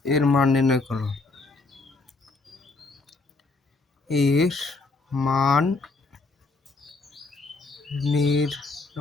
এর মান নির্ণয় করো। এর মান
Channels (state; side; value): quieter; right; 3.7 dB